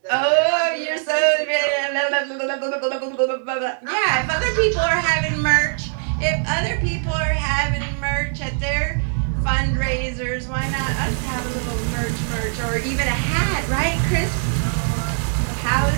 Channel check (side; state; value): left; silent; 65 dB below the other